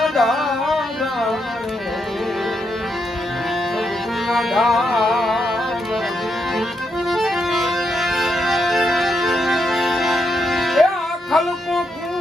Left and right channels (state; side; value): normal; both; correlation 0.80